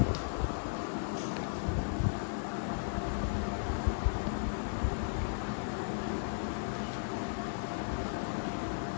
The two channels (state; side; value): silent; right; digital silence